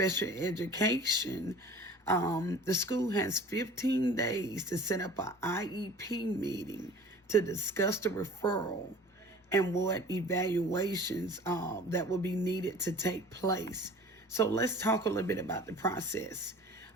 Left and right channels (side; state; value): both; normal; correlation 0.44